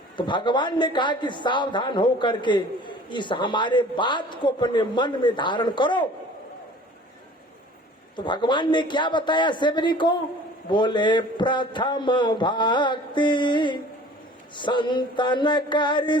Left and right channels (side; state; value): both; normal; correlation 0.47